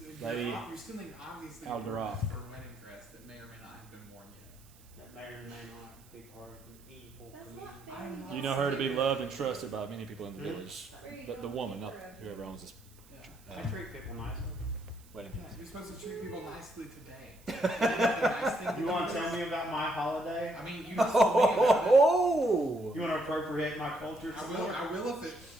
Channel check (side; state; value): right; noise; hiss, 26 dB below the sound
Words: stealing obviously Alderoth. for a wedding dress that may or may not have been worn yet. that may or may not be part of an evil That's community. not I'm fair. not You know her to be loved and trusted by many people in the village. Where are you But the going woman, with not her? whoever owns this Yeah. I treat people nicely. wedding. Yeah, you're supposed to treat people nicely today. Nice thing You want to do tell is- me about my holiday? I mean, you just told me about it. Oh! You want to appropriate my culture? I will